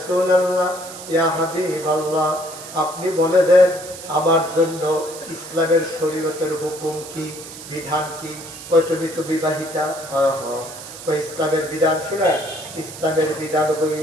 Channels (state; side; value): noise; right; hiss, 13 dB below the sound